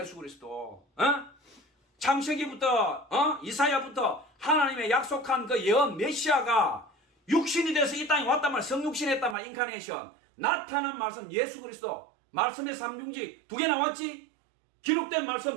그리스도. 창세기부터 이사야부터 하나님의 약속한 그 예언 메시아가 육신이 돼서 이 땅에 왔단 말, 성육신 했단 말, 인카네이션. 나타난 말씀, 예수 그리스도. 말씀의 삼중지 두 개 나왔지? 기록된 말씀,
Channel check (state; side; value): drops out; left; at 9.3 s